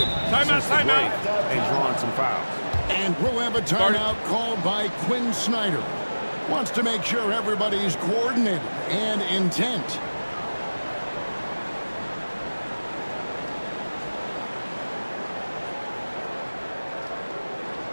since the break and drawn some fouls. And we'll have a timeout called by Quinn Snyder. Wants to make sure everybody's coordinated and intent.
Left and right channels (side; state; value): both; inverted; correlation -1.00